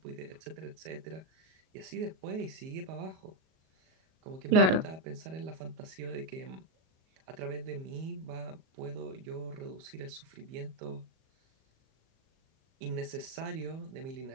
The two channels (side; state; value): left; late; 38 ms